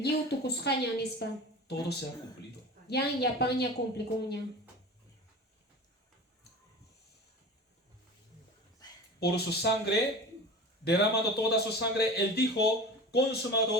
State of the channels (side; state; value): both; normal; correlation 0.34